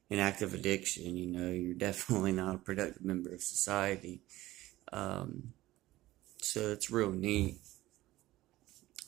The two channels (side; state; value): left; quieter; 16.8 dB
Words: active addiction. You're definitely not a productive member of society. Um, so it's real neat.